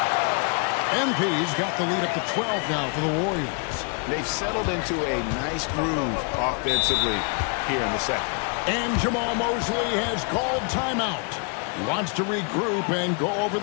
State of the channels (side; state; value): right; quieter; 38.9 dB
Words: MP's got the lead up to 12 now for the Warriors. They've settled into a nice groove offensively here in the second. And Jamal Mosley has called timeout. He wants to regroup and go over